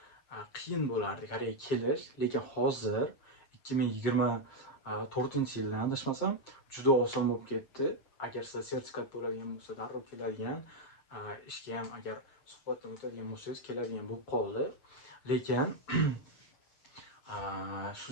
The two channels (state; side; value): late; right; 7.4 ms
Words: qiyin bo'lardi Koreyaga kelish, lekin hozir 2024-yildan adashmasam juda oson bo'lib ketdi. Agar sizda sertifikat bo'ladigan bo'lsa, darrov keladigan, ishga ham agar suhbatdan o'tadigan bo'lsangiz keladigan bo'lib qoldi. Lekin shu